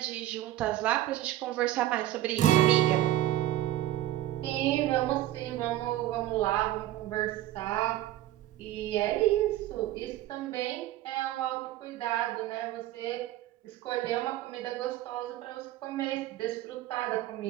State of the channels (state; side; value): quieter; left; 14.2 dB